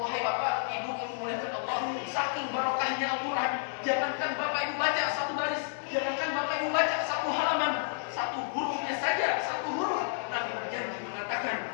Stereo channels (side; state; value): right; silent; digital silence